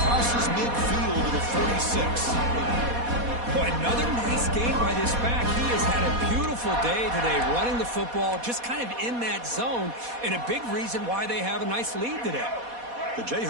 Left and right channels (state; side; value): late; left; 4.2 ms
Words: midfield to the 46. Boy, another nice game by this back. He has had a beautiful day today running the football, just kind of in that zone, and a big reason why they have a nice lead today. The